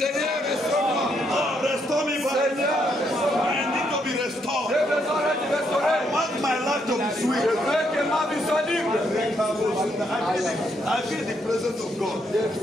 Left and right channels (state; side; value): normal; both; correlation 0.75